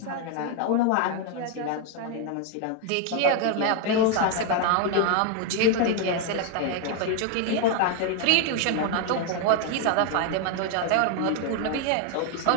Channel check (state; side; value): different; both; correlation 0.01